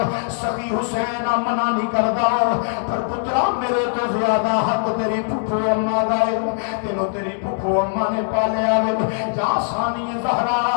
سخی حسین منع نہیں کردا پر پترا میرے تو زیادہ حق تیری پھپھو اماں دا ہے تینوں تیری پھپھو اماں نے پالیا ہے جا ثانی زہرا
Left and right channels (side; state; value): right; silent; 65 dB below the other